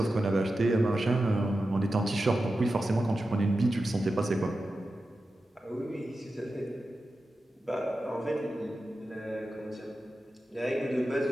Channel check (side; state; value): both; normal; correlation 0.92